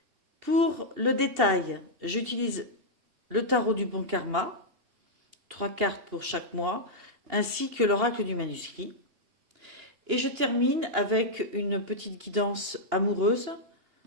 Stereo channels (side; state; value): left; late; 2.8 ms